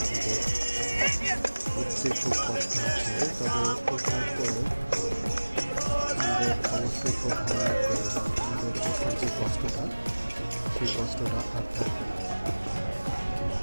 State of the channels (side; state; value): both; inverted; correlation -1.00